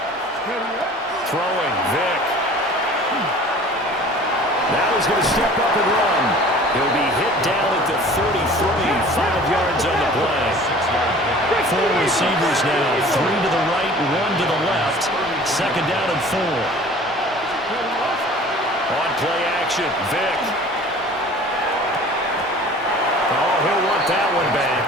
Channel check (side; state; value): both; normal; correlation 0.46